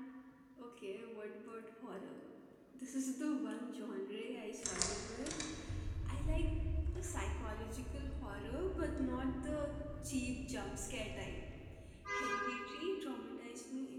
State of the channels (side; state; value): both; identical; correlation 1.00